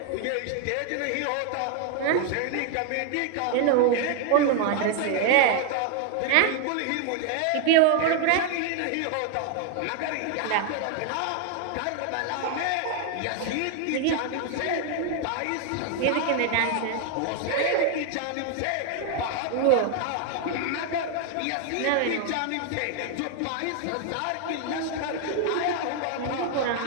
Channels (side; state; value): both; different; correlation 0.00